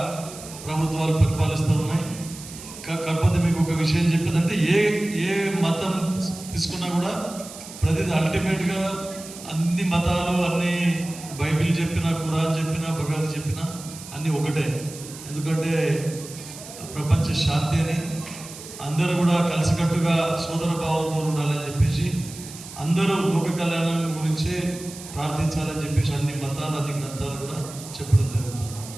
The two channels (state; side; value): noise; right; hiss, 14 dB below the sound